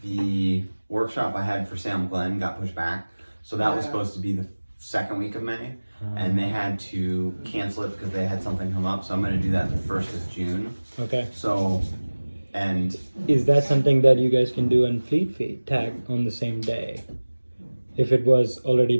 the workshop I had for Salem Glen got pushed back. So that was supposed to be the 2nd week of May, and they had to cancel it because they had something come up. So I'm going to do that the 1st of June. Okay. So, and is that something that you guys can do on Fleet Feet, tag on the same day? If it was already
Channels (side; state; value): both; inverted; correlation -1.00